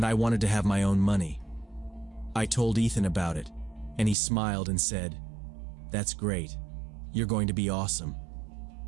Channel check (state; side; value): drops out; left; at 4.2 s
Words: I wanted to have my own money. I told Ethan about it, and he smiled and said, "That's great. You're going to be awesome."